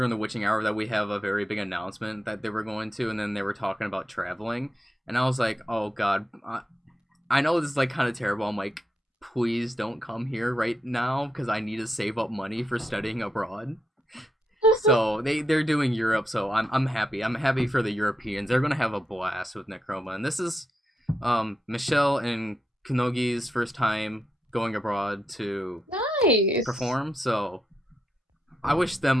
the witching hour that we have a very big announcement that they were going to, and then they were talking about traveling, and I was like, oh god, I know this is like kind of terrible. I'm like, please don't come here right now because I need to save up money for studying abroad. So they're doing Europe, so I'm happy. I'm happy for the Europeans. They're gonna have a blast with Necroma, and this is Michelle and Kunogi's first time going abroad to perform. So I wish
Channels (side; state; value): both; normal; correlation 0.84